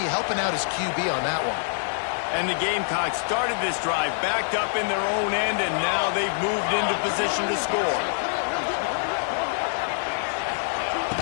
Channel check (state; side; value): silent; right; digital silence